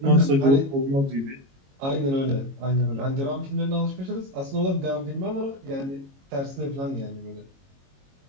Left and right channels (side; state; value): left; late; 22 ms